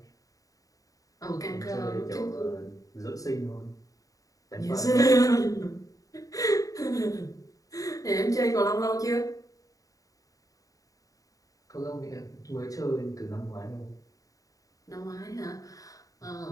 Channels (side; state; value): right; late; 0.17 ms